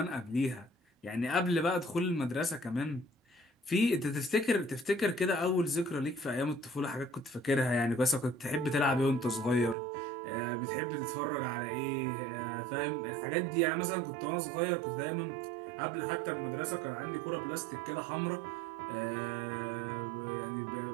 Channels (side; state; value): left; drops out; at 9.8 s